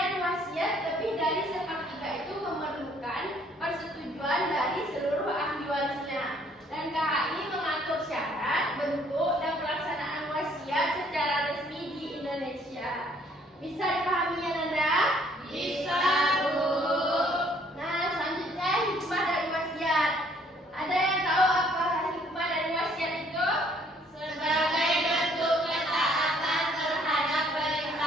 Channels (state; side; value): normal; both; correlation 0.62